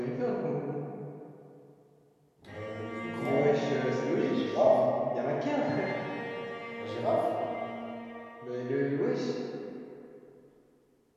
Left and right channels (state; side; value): identical; both; correlation 1.00